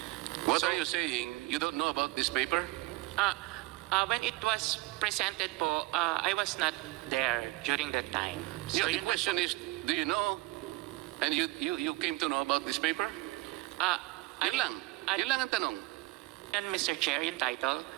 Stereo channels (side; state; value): left; quieter; 20.2 dB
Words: What are you saying? You don't know about this paper? When it was presented po, I was not there during that time. So the yun question is, do you know? And you came to know about this paper? Yun lang. Yun lang ang tanong. And Mr. Chair, yung title,